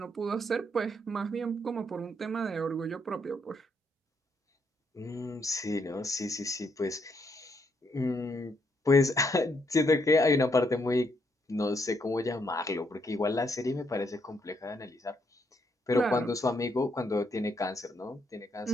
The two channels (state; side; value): normal; both; correlation 0.74